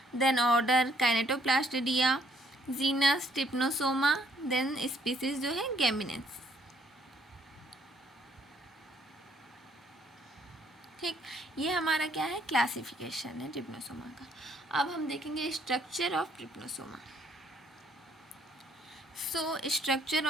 then order kinetoplastida, genus trypanosoma, then species जो है गेमिनेंस। ठीक, ये हमारा क्या है, क्लासिफिकेशन है ट्रिप्नोसोमा का। अब हम देखेंगे structure of trypanosoma. Structure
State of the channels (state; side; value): normal; both; correlation 0.66